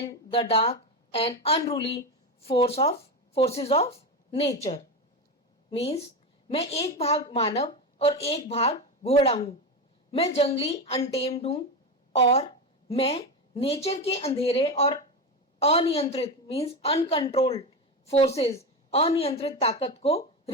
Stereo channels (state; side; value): normal; both; correlation 0.17